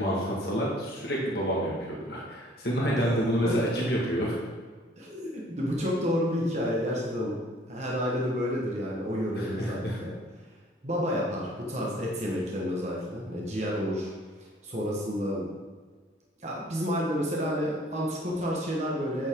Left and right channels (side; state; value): both; normal; correlation 0.57